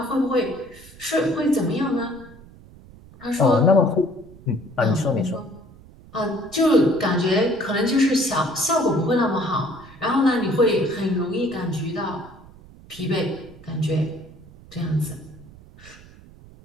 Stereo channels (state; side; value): noise; right; rumble, 22 dB below the sound